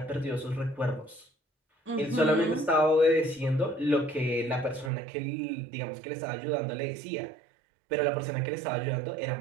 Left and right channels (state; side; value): drops out; left; at 4.9 s